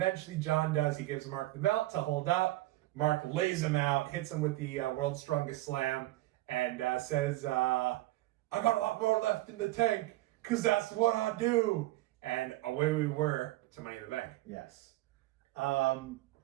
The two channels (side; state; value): left; quieter; 17.6 dB